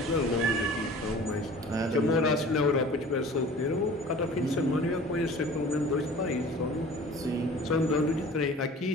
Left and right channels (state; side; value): normal; both; correlation 0.44